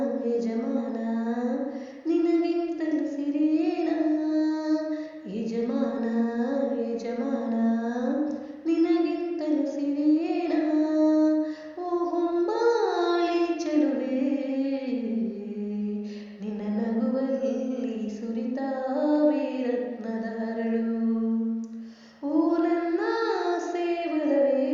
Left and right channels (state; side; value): identical; both; correlation 1.00